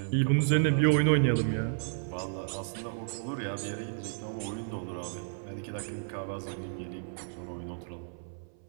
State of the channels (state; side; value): silent; left; 56 dB below the other